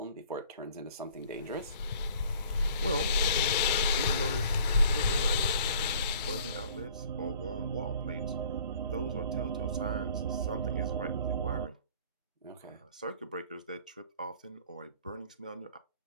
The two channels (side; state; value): both; inverted; correlation -0.53